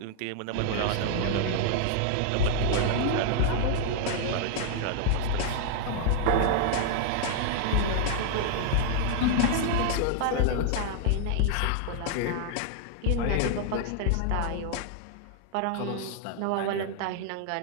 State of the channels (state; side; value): different; both; correlation 0.00